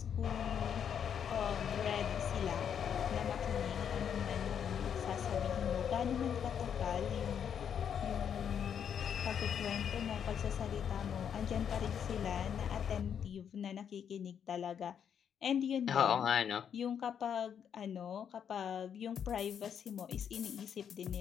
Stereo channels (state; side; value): quieter; right; 8.1 dB